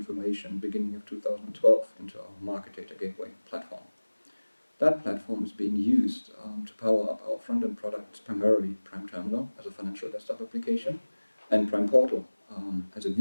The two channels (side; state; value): both; inverted; correlation -1.00